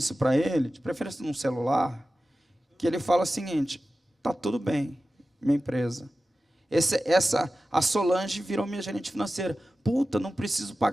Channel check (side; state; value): both; normal; correlation 0.95